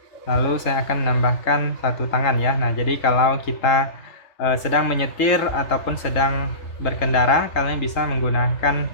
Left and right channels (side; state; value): right; late; 3.8 ms